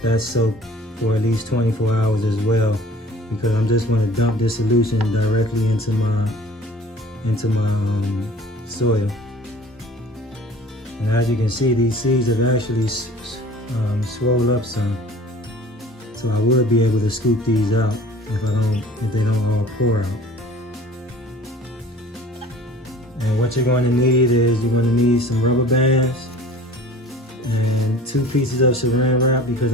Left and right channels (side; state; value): both; normal; correlation 0.46